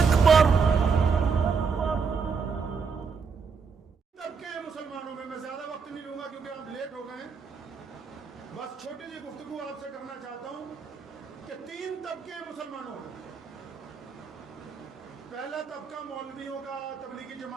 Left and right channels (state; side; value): quieter; left; 5.6 dB